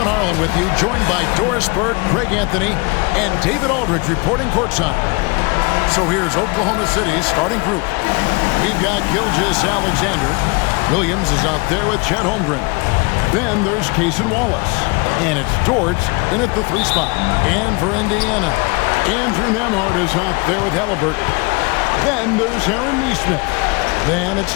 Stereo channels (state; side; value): quieter; right; 28.7 dB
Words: Harlan with you, joined by Doris Bird, Greg Anthony, and David Aldridge reporting courtside. So here's Oklahoma City's starting group. We've got Gilgeous Alexander. Williams is out there with Chet Holmgren. Then there's Cason Wallace. And it's Dort in at the 3 spot. And for Indiana, Andrew Nembhard is out there with Halliburton. Then there's Aaron Nesmith. Then it's